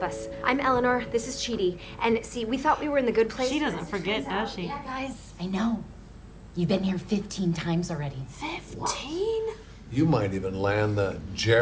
us. I'm Eleanor, this is Chidi. And see, we thought we were in the good place. She doesn't forget, does she? Yeah, guys, I know. You've been here 15 times already. 15? You might even land the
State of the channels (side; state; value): both; identical; correlation 1.00